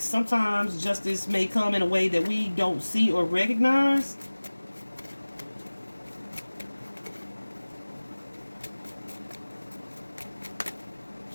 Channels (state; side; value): inverted; both; correlation -1.00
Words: sometimes justice may come in a way that we don't see or recognize.